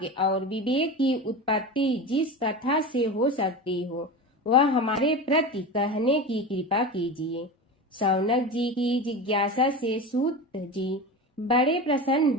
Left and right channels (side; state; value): both; normal; correlation 0.26